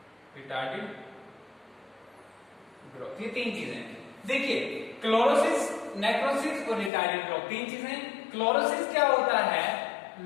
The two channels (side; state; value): right; drops out; at 6.9 s